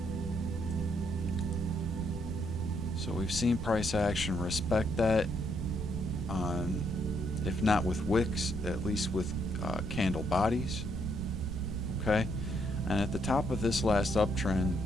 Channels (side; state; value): right; noise; rumble, 5 dB below the sound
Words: So we've seen price action respect that, on, if not with wicks, at least with candle bodies. Okay, and at the top of this last uptrend,